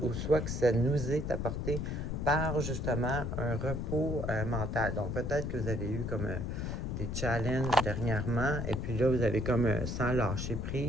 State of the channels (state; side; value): noise; left; rumble, 3 dB below the sound